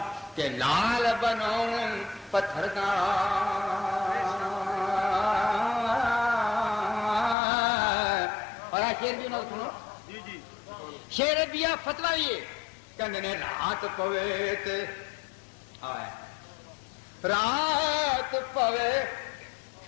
کہ لال بناؤں پتھر دا اور شیر بھی نہ سنو شیر دیا فتوہ یہ کہنے نے رات پوے تے آئے رات پوے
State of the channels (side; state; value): right; drops out; at 7.4 s